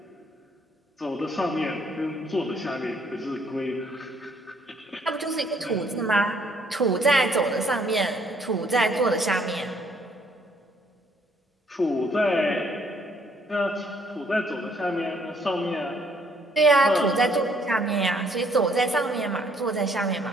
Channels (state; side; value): normal; both; correlation 0.65